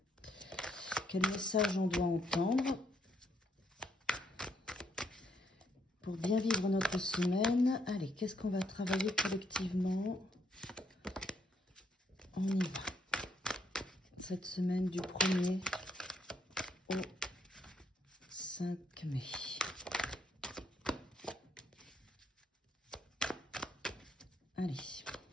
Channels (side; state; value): both; normal; correlation 0.73